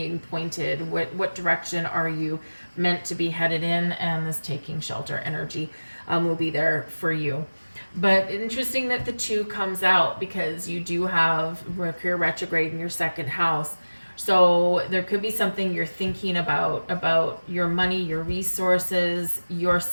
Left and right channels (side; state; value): both; inverted; correlation -1.00